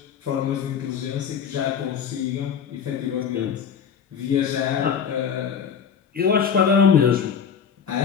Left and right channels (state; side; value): quieter; right; 7.4 dB